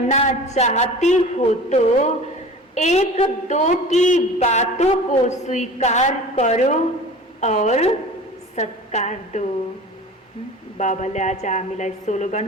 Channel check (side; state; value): both; normal; correlation 0.39